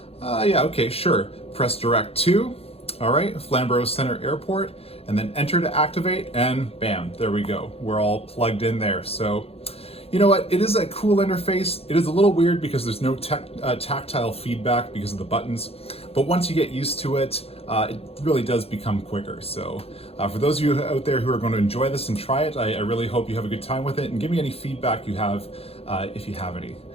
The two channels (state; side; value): late; right; 0.29 ms